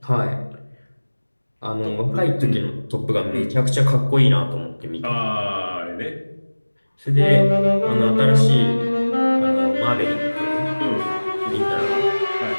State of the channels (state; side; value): inverted; both; correlation -1.00